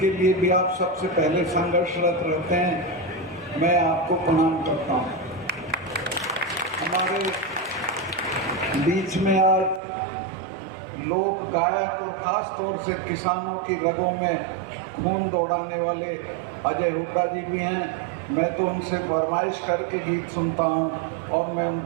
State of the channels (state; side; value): drops out; left; at 9.8 s